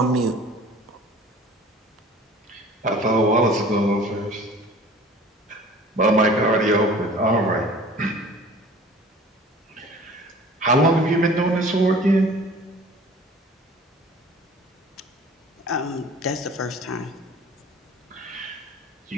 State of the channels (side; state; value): both; normal; correlation 0.46